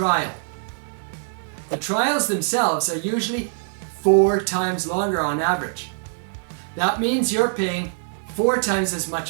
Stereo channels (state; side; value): silent; left; digital silence